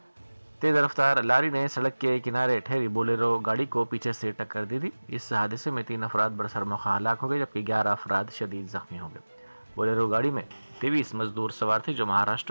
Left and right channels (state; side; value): inverted; both; correlation -1.00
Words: तेज़ रफ्तार लारी ने सड़क के किनारे ठहरी बोलेरो गाड़ी को पीछे से टक्कर दी थी। इस हादसे में 3 अफराद बरसर मौका हलाक हो गए, जबकि 11 अफराद शदीद जख्मी हो गए। बोलेरो गाड़ी में 23 मजदूर सवार थे जो